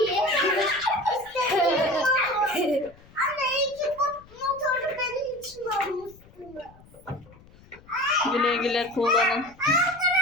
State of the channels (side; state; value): left; noise; rumble, 25 dB below the sound